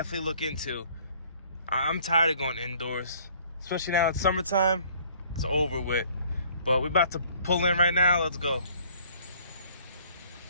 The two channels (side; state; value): both; inverted; correlation -0.57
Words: look into. I'm tired of going indoors, especially now it's summertime. It's over with. But we're about to pull in right now. Let's go.